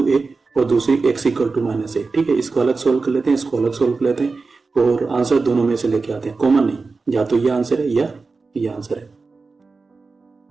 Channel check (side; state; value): left; quieter; 4.1 dB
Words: a और दूसरी x equal to minus a। ठीक है, इसको अलग सोल्व कर लेते हैं, इसको अलग सोल्व कर लेते हैं और आंसर दोनों में से लेके आते हैं, कॉमन नहीं, या तो ये आंसर है या ये आंसर है।